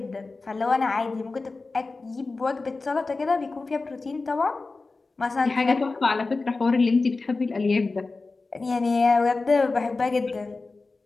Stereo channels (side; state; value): right; quieter; 3.7 dB